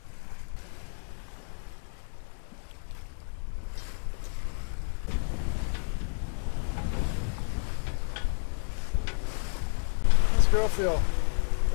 How's the girl feel?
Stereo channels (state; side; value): silent; right; 58 dB below the other